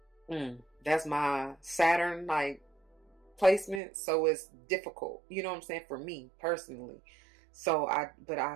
that's my Saturn like placement, so it's difficult. You know what I'm saying, for me personally. So but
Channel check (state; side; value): drops out; left; at 3.8 s